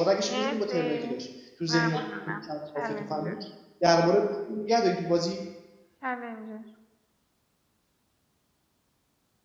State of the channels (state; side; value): identical; both; correlation 1.00